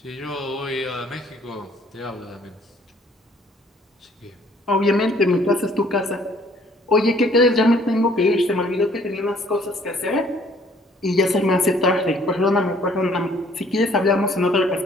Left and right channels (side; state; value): both; normal; correlation 0.60